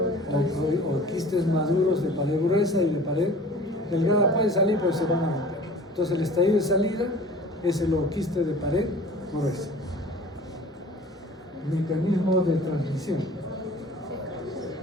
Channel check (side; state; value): both; normal; correlation 0.44